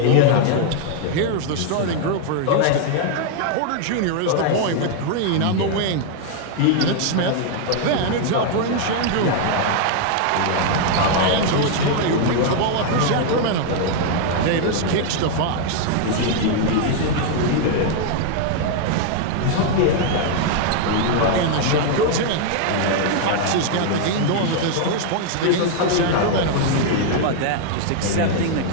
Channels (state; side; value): different; both; correlation 0.00